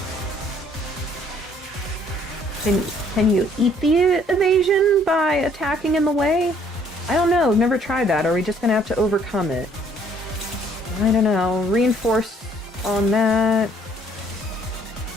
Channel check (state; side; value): normal; both; correlation 0.62